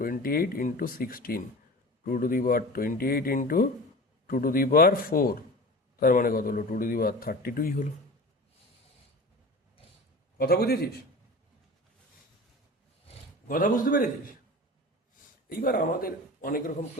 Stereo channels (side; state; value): both; normal; correlation 0.34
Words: into 16, 2 to the power 28 into 2 to the power 4, তার মানে কত হলো? 2 টু দি পাওয়ার 32ই হলো। কথা বুঝেছিস? কথা বুঝতে পেরেছিস? এইবার আমাদের অনেক রকম